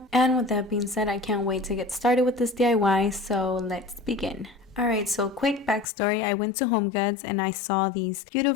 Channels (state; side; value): drops out; right; at 5.9 s